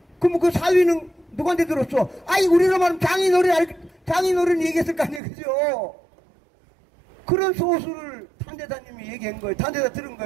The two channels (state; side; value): drops out; left; at 5.2 s